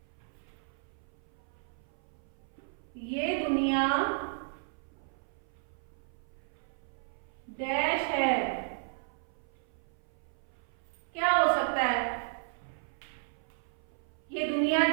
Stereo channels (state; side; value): silent; left; 55 dB below the other